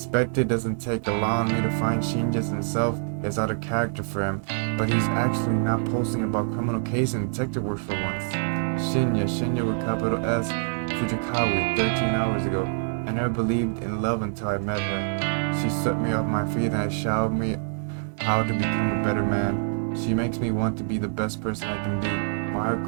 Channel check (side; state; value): left; silent; 61 dB below the other